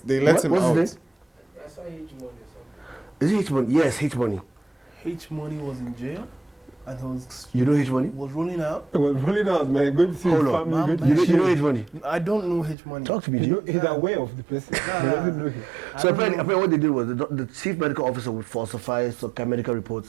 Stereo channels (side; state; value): left; drops out; at 12.8 s